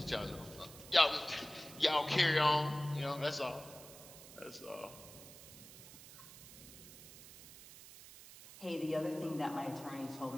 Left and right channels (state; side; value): noise; right; hiss, 17 dB below the sound